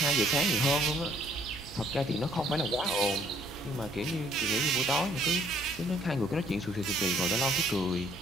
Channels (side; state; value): both; normal; correlation 0.63